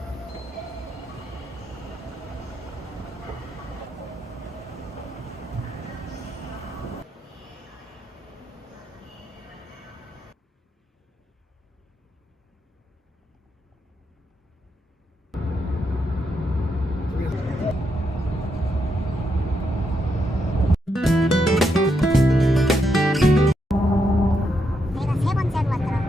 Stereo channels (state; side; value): normal; both; correlation 0.81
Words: 내가 세 번째로